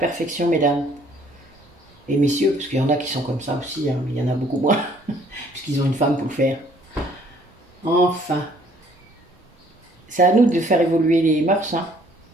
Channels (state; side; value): normal; both; correlation 0.60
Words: mesdames. Et messieurs, parce qu'il y en a qui sont comme ça aussi, hein, mais il y en a beaucoup moins, puisqu'ils ont une femme pour le faire. Enfin, c'est à nous de faire évoluer les mœurs, hein.